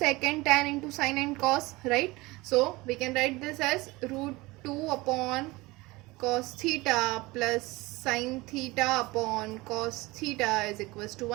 and tan into sin and cos, right. So we can write this as √2 upon cos theta plus sin theta upon cos theta is equals to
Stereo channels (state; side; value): quieter; left; 21.9 dB